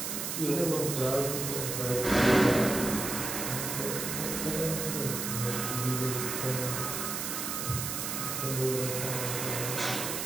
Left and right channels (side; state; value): right; noise; hiss, 3 dB below the sound